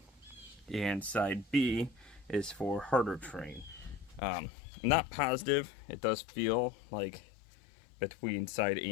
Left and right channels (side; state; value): right; drops out; at 4.2 s